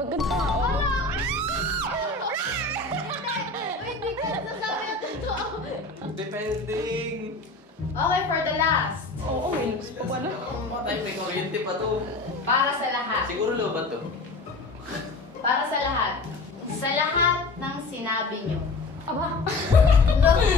Okay, for the last. Oo, may looks pa pala. Tayo may kuryente pa to. Para sa lahat. Siguro lobat to. Para sa lahat. Sa lahat ng sinabi nyo. Aba,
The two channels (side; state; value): right; quieter; 3.3 dB